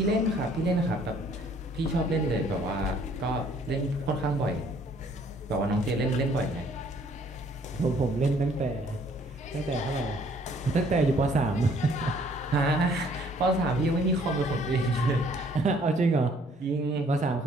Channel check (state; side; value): normal; both; correlation 0.61